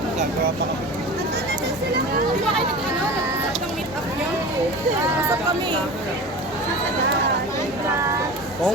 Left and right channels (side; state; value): both; normal; correlation 0.34